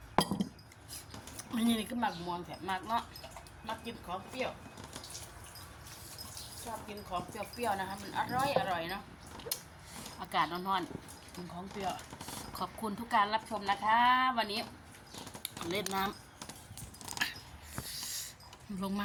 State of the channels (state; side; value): identical; both; correlation 1.00